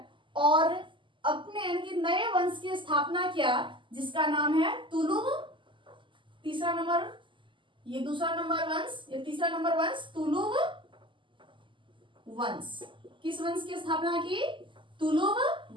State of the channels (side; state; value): left; late; 0.24 ms